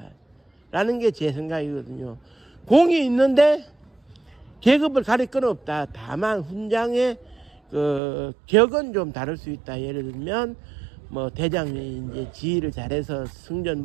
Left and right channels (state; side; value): drops out; left; at 8.0 s